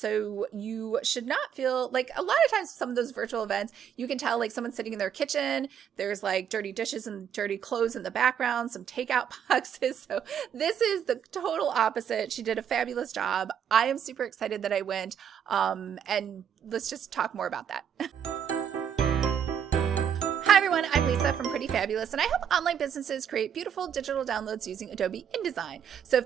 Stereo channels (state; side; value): quieter; left; 8.5 dB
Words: you should not feel like, a lot of times some of those virtual events, you can tell like someone's sitting in their kitchen, there's like dirty dishes and dirty clothes in the background, some takeout boxes. So this is the total opposite. She did a fabulous job. I am super excited that I went. And let's just talk more about that. Hi everyone, I'm Lisa from Pretty Fabulous, and I help online businesses create beautiful digital downloads using Adobe InDesign. So if